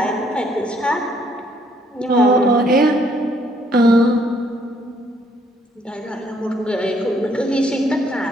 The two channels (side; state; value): both; normal; correlation 0.67